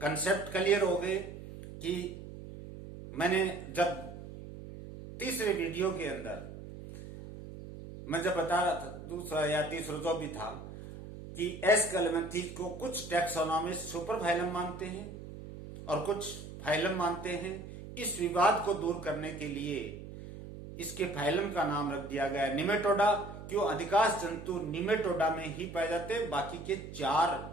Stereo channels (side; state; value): right; noise; hum, 12 dB below the sound